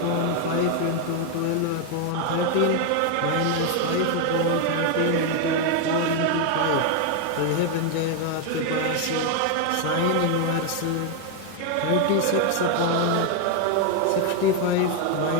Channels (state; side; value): different; both; correlation 0.01